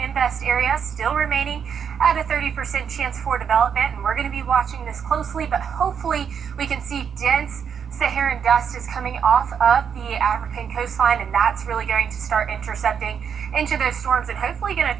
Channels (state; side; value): quieter; left; 7.4 dB